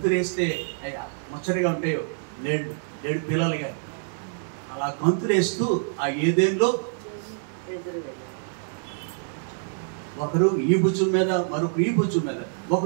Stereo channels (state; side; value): silent; left; digital silence